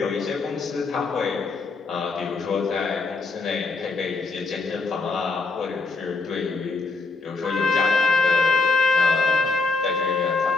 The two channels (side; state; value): right; quieter; 3.8 dB